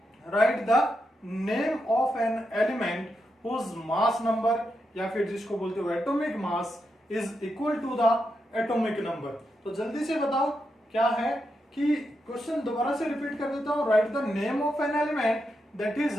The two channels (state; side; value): normal; both; correlation 0.85